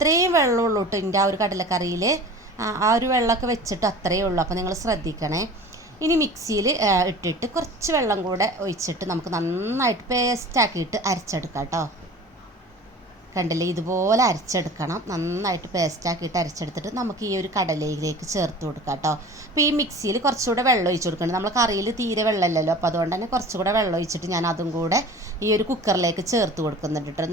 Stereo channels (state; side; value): normal; both; correlation 0.40